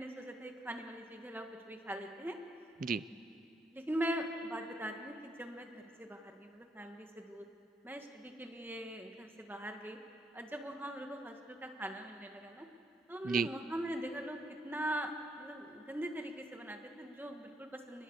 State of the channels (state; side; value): normal; both; correlation 0.74